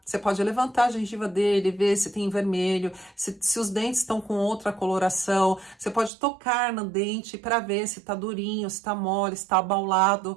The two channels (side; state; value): left; drops out; at 6.1 s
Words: Você pode levantar a gengiva dele, ver se tem vermelho, se os dentes estão com outra coloração. Você pode tocar no dente para ver se está durinho, se está mole, se está